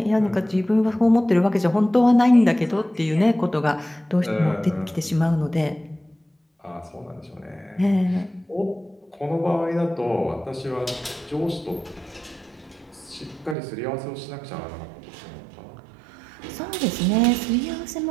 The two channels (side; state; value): left; drops out; at 13.6 s